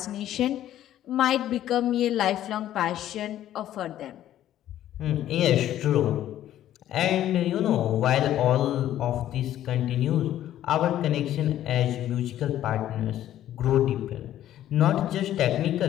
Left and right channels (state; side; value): quieter; right; 12.3 dB